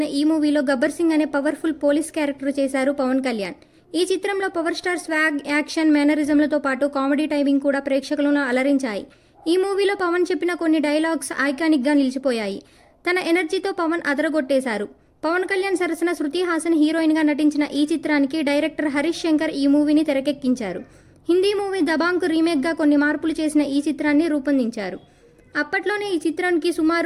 ఈ మూవీలో గబ్బర్ సింగ్ అనే పవర్ఫుల్ పోలీస్ క్యారెక్టర్ చేశారు పవన్ కళ్యాణ్. ఈ చిత్రంలో పవర్ స్టార్ స్వాగ్, యాక్షన్, మేనరిజంలతో పాటు కామెడీ టైమింగ్ కూడా ప్రేక్షకులను అలరించాయి. ఈ మూవీలో పవన్ చెప్పిన కొన్ని డైలాగ్స్ ఐకానిక్గా నిలిచిపోయాయి. తన ఎనర్జీతో పవన్ అదరగొట్టేశారు. పవన్ కళ్యాణ్ సరసన శృతి హాసన్ హీరోయిన్గా నటించిన ఈ చిత్రానికి డైరెక్టర్ హరీష్ శంకర్ ఈ మూవీని తెరకెక్కించారు. హిందీ మూవీ దబాంగ్కు రీమేక్గా కొన్ని మార్పులు చేసిన ఈ చిత్రాన్ని రూపొందించారు. అప్పట్లోనే ఈ చిత్రానికి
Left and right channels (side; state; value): both; identical; correlation 1.00